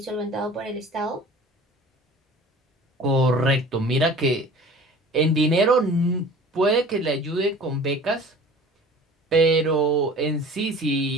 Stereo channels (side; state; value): both; normal; correlation 0.44